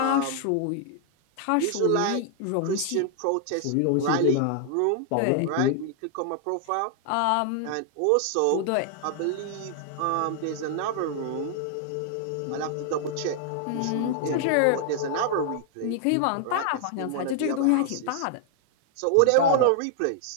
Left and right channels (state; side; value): different; both; correlation 0.00